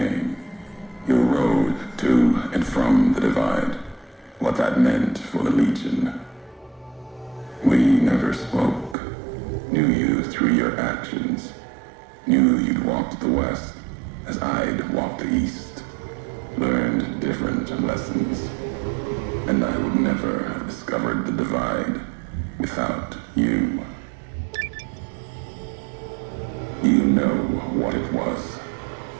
your road to and from the divide, what that meant for the legion. We never spoke. Knew you through your actions. Knew you'd walked the west as I'd walked the east. Learned different lessons. And I would never have discovered the divide without you. You know what it was.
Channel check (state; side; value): drops out; left; at 9.0 s